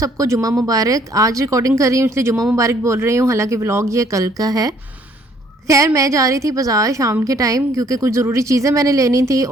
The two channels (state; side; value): normal; both; correlation 0.62